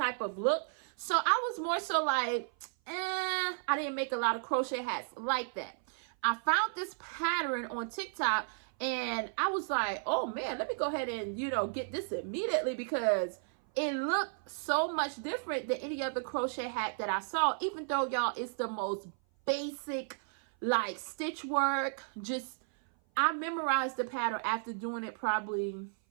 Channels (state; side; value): silent; left; 55 dB below the other